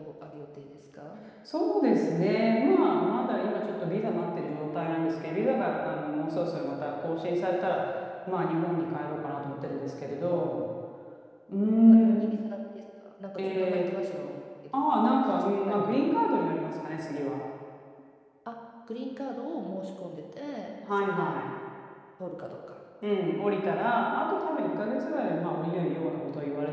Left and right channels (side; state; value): both; identical; correlation 1.00